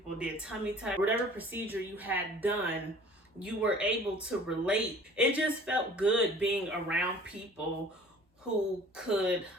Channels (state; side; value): normal; both; correlation 0.48